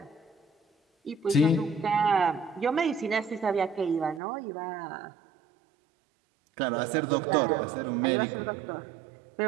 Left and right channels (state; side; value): drops out; left; at 4.2 s